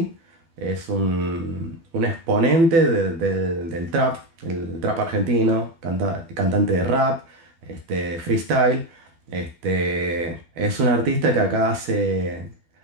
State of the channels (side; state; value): left; late; 12 ms